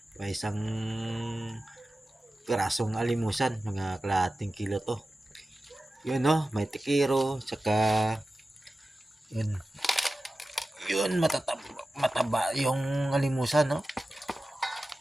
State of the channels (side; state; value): both; normal; correlation 0.95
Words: May isang pirasong alimusan, mga kalahating kilo to. Yun no, may tikiro, tsaka yun mataba yung alimusan no.